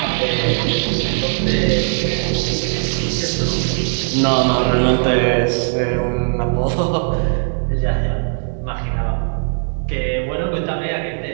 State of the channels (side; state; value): left; silent; digital silence